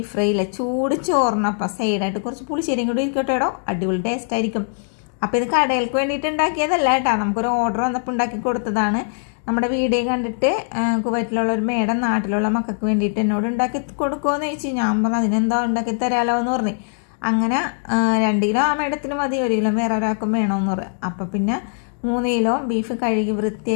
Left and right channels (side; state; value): right; silent; digital silence